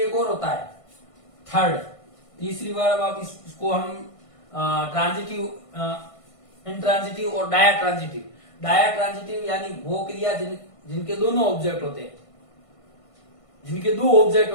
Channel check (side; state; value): right; late; 1.5 ms